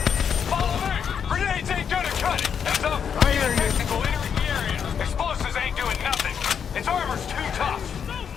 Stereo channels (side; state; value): right; quieter; 7.4 dB